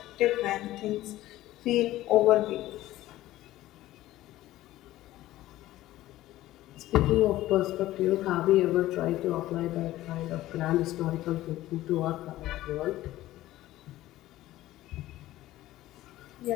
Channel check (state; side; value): quieter; right; 15.5 dB